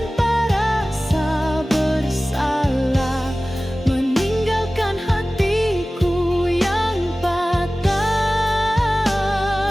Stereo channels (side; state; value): both; normal; correlation 0.97